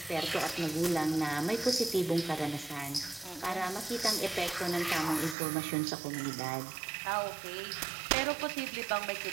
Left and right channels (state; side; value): drops out; left; at 5.4 s